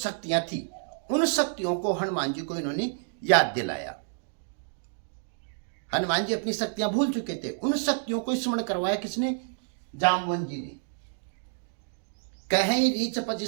थी, उन शक्तियों को हनुमान जी को इन्होंने याद दिलाया। हनुमान जी अपनी शक्तियां भूल चुके थे, उन शक्तियों को स्मरण करवाया किसने? जामवंत जी ने। कहीं रीचपति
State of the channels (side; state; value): left; silent; digital silence